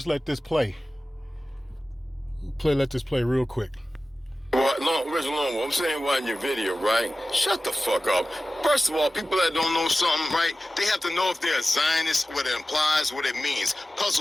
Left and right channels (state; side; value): normal; both; correlation 0.96